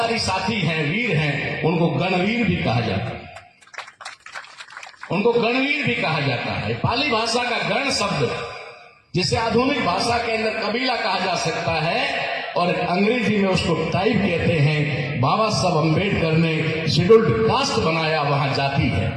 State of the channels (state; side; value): identical; both; correlation 1.00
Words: साथी हैं, वीर हैं, उनको गणवीर भी कहा जाता है, उनको गणवीर भी कहा जाता है। पाली भाषा का गण शब्द, जिसे आधुनिक भाषा के अंदर कबीला कहा जा सकता है और अंग्रेजी में उसको ट्राइब कहते हैं। बाबा साहब अम्बेडकर ने शेड्यूल्ड कास्ट बनाया, वहां जाति है।